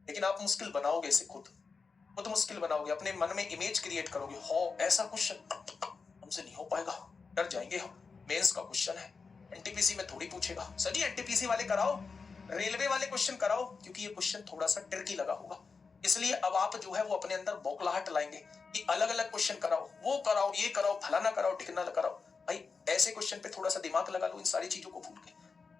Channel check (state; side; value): quieter; right; 4.8 dB